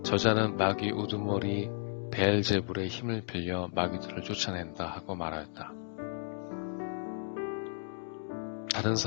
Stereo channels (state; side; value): silent; right; digital silence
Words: 저자는 마귀 우두머리 베엘제불의 힘을 빌려 마귀들을 쫓아낸다 하고 말하였다. 다른